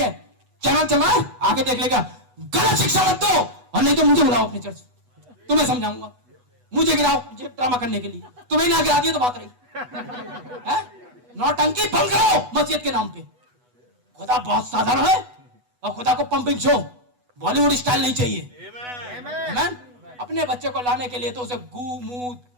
है। चैनल चल रहा है, आके देख लेगा। गलत शिक्षा मत दो, और नहीं तो मुझे बुलाओ अपनी चर्च, तुम्हें समझाऊंगा। मुझे गिराओ मुझे ड्रामा करने के लिए, तुम्हें ना गिरा दिया तो बात रही। नौटंकी बंद करो मस्जिद के नाम पे। खुदा बहुत साधारण है, और खुदा को पंपिंग शो बॉलीवुड स्टाइल नहीं चाहिए। आमीन। अपने बच्चे को लाने के लिए तो उसे गू मुंह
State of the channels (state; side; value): late; left; 8.1 ms